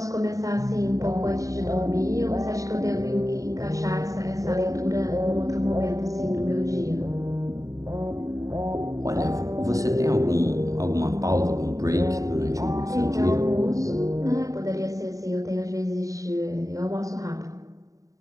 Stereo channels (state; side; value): late; left; 0.16 ms